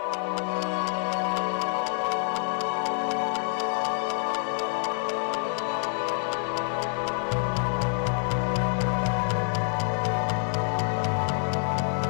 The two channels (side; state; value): right; silent; 56 dB below the other